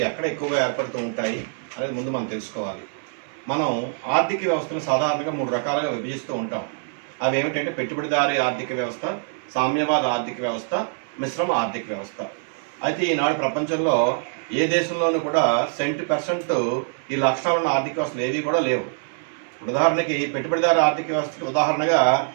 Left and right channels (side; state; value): left; silent; 63 dB below the other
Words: ఎక్కడ ఎక్కువగా ఏర్పడుతూ ఉంటాయి అనేది ముందు మనం తెలుసుకోవాలి. మనం ఆర్థిక వ్యవస్థను సాధారణంగా 3 రకాలుగా విభజిస్తూ ఉంటాం. అవి ఏమిటంటే పెట్టుబడిదారీ ఆర్థిక వ్యవస్థ, సామ్యవాద ఆర్థిక వ్యవస్థ, మిశ్రమ ఆర్థిక వ్యవస్థ. అయితే ఈనాడు ప్రపంచంలో ఏ దేశంలోనూ కూడా 70% ఈ లక్షణాలున్న ఆర్థిక వ్యవస్థలు ఏవి కూడా లేవు. ఉదాహరణకి పెట్టుబడిదారీ ఆర్థిక వ్యవస్థకి ఉదాహరణగా